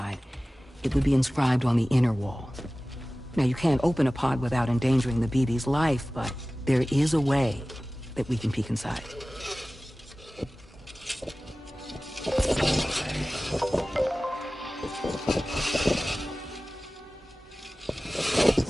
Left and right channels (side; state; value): both; normal; correlation 0.97